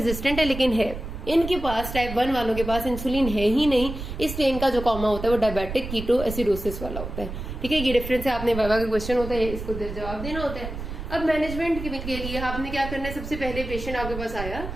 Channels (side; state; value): right; noise; rumble, 8 dB below the sound